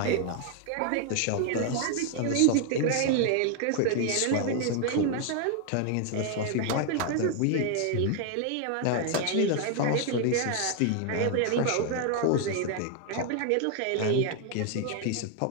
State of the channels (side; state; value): both; different; correlation 0.00